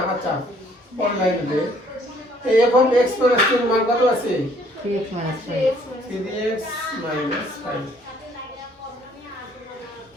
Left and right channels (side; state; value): both; normal; correlation 0.61